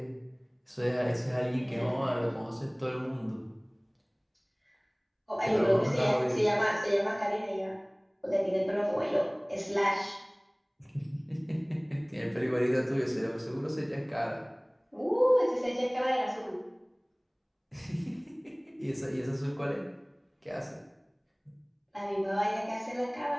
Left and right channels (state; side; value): identical; both; correlation 1.00